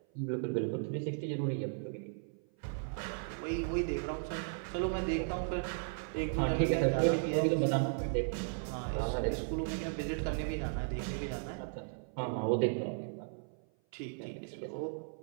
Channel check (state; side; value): silent; left; 54 dB below the other